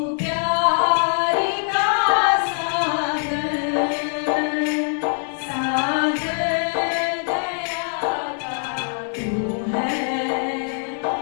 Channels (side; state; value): right; silent; digital silence